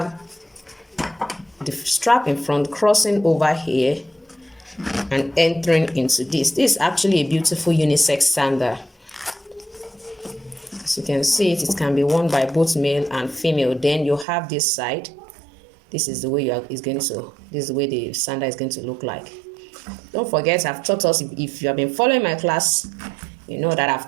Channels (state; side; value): drops out; left; at 14.2 s